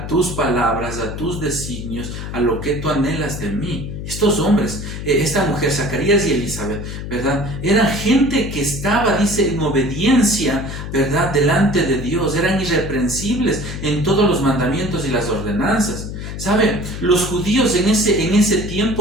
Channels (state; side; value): noise; left; hum, 7 dB below the sound